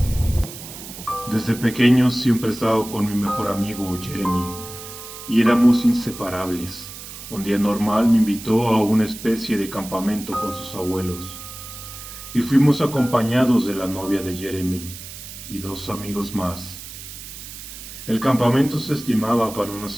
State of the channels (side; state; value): right; noise; hiss, 13 dB below the sound